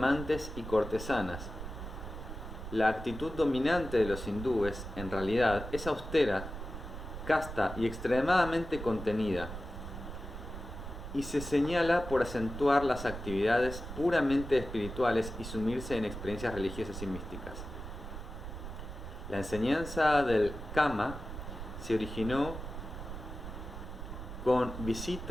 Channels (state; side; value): noise; right; rumble, 9 dB below the sound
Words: y cortesanas. La actitud dominante de los hindúes, en realidad, es austera, casta y extremadamente contenida, y se señala por acentuar las actividades puramente espirituales y sumirse en experiencias religiosas y místicas. La enseñanza del Kama se originó con